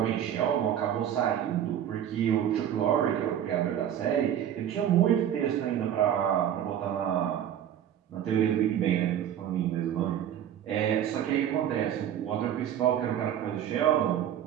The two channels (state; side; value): quieter; left; 10.2 dB